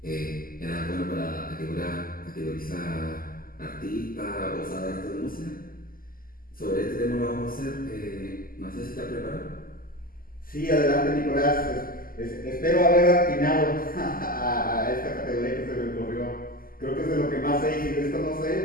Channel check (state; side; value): late; right; 0.42 ms